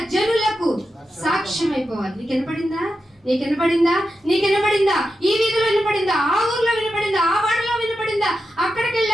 జనులకు సాక్ష్యం అయిపోవాలి. నీకు వినపడిందా? ఈ వీధిలో వినపడిందా? ఆ ఊర్లో వినపడిందా? ఆ వాడలో వినపడిందా? అక్కడికి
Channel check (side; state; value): both; normal; correlation 0.89